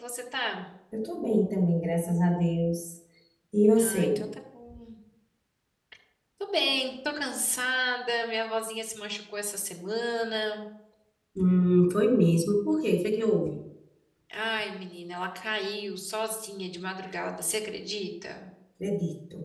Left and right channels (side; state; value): both; identical; correlation 1.00